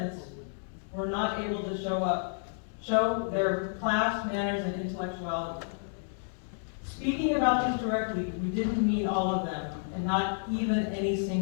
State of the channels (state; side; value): silent; right; digital silence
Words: were not able to show their class, manners, and intellectuality. Speaking about these directly, we didn't mean all of them, and not even any